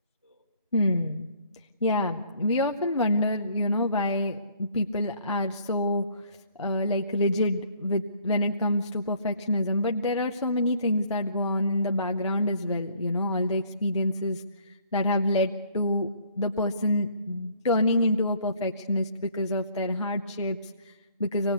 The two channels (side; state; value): both; inverted; correlation -0.60